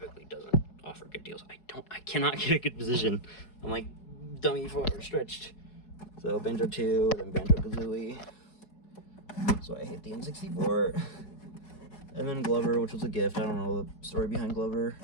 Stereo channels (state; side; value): late; right; 4.7 ms